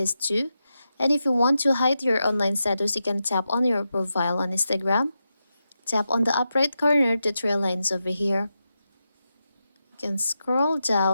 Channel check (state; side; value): inverted; both; correlation -0.88